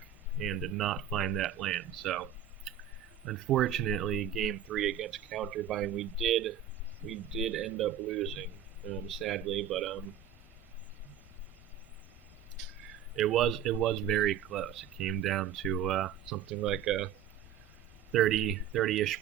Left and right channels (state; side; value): quieter; left; 9.3 dB